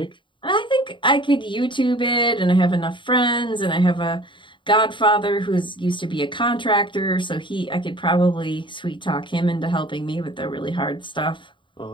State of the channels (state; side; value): late; right; 0.23 ms